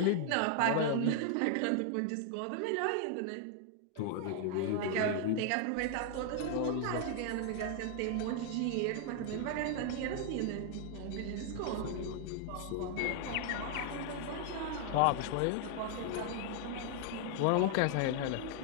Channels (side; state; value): both; different; correlation 0.00